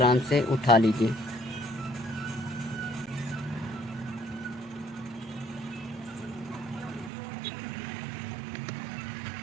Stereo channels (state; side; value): drops out; left; at 7.1 s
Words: से उठा लीजिए।